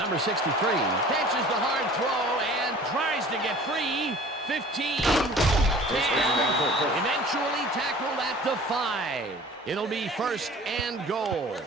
63 catches the hard throw and tries to get free. 15, 10, eventually tackled at the 5. It'll be first and goal.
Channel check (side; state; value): both; normal; correlation 0.46